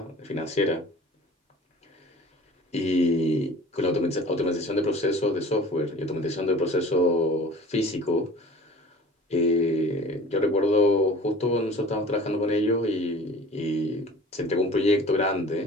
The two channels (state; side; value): normal; both; correlation 0.44